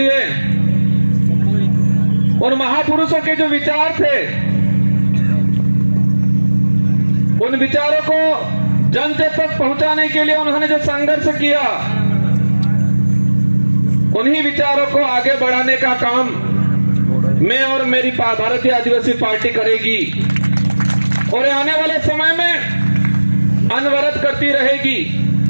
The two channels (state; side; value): inverted; both; correlation -1.00